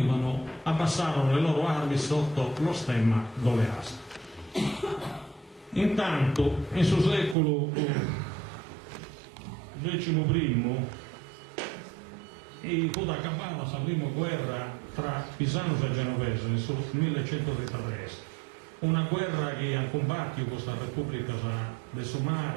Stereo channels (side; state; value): left; drops out; at 7.4 s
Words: abbassarono le loro armi sotto lo stemma d'Oleastro. Intanto, in suo secolo XI e fu da cavallo la prima guerra tra Pisanos e Genovese nel 1133. Una guerra che ha combattuto questa Repubblica del suo